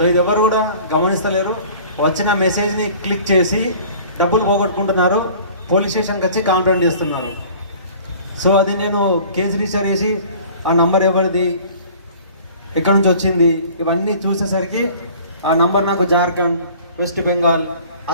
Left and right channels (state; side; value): inverted; both; correlation -0.48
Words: ఇది ఎవరు కూడా గమనిస్తలేరు. వచ్చిన మెసేజ్ని క్లిక్ చేసి డబ్బులు పోగొట్టుకుంటున్నారు, పోలీస్ స్టేషన్కి వచ్చి కంప్లైంట్ చేస్తున్నారు. సో అది నేను కేసు రిజిస్టర్ చేసి ఆ నంబర్ ఎవరిది, ఎక్కడి నుంచి వచ్చింది, ఇవన్నీ చూసేసరికి ఆ నంబర్ నాకు జార్ఖండ్, వెస్ట్ బెంగాల్,